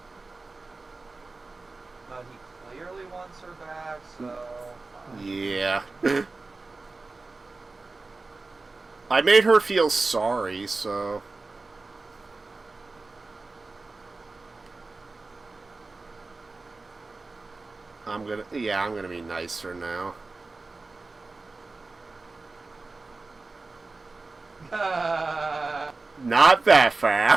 But he clearly wants her back, so. Yeah. I made her feel sorry, so... I'm gonna be nicer now. Not that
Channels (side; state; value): left; quieter; 3.6 dB